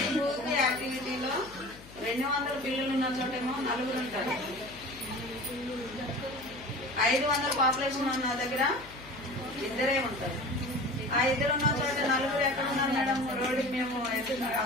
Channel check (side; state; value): left; noise; hum, 19 dB below the sound